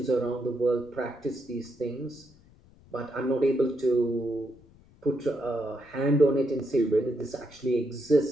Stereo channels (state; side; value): noise; left; rumble, 26 dB below the sound